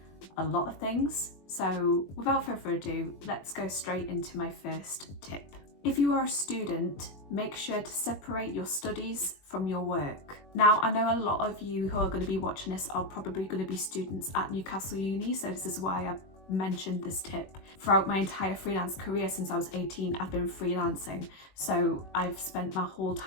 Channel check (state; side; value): late; right; 21 ms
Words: a lot of things. So without further ado, let's go straight into my first tip. If you are a student, make sure to separate your studies from your work. Now, I know a lot of you who are going to be watching this are probably going to be students at Newcastle Uni, so this is why I mentioned this tip. Throughout my entire freelance career since I was 18, I've been freelancing. So I've spent my whole